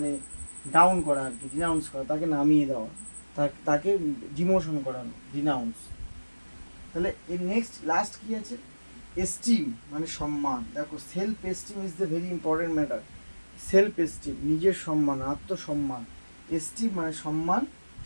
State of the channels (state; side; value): inverted; both; correlation -1.00